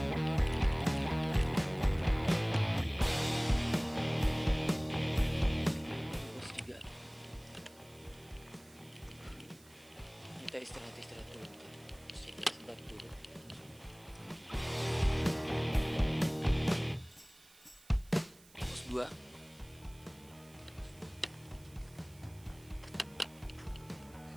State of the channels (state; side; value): noise; right; hiss, 25 dB below the sound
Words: Kita istirahat dulu, sebentar dulu. 2.